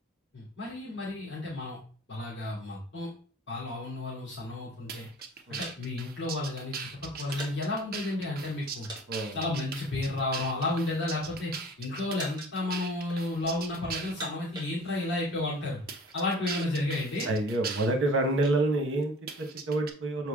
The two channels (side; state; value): both; normal; correlation 0.46